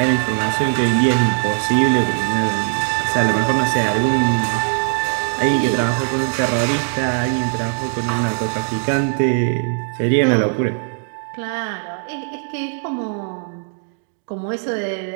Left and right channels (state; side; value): silent; left; digital silence